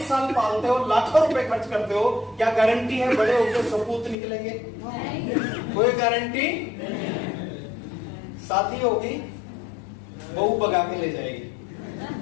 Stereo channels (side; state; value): right; drops out; at 4.2 s